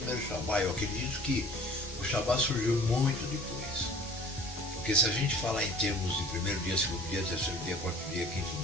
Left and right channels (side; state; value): both; normal; correlation 0.48